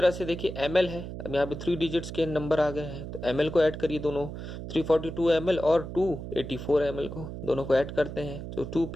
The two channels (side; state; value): right; noise; hum, 8 dB below the sound